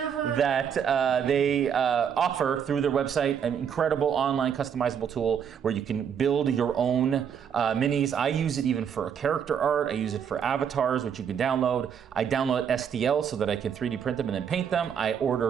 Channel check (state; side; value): quieter; left; 7.9 dB